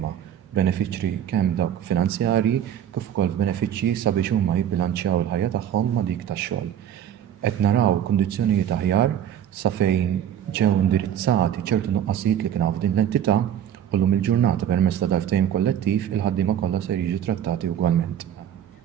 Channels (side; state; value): left; quieter; 10.1 dB